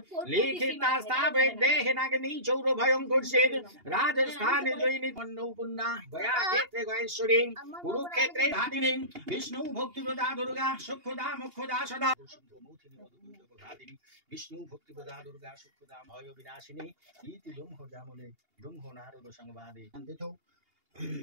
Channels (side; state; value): left; late; 2.8 ms